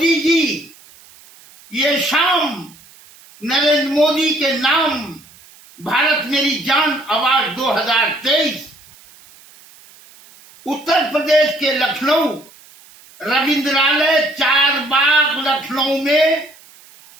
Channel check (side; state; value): right; noise; hiss, 25 dB below the sound